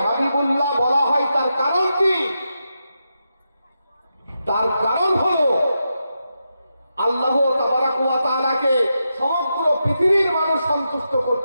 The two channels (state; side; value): inverted; both; correlation -0.87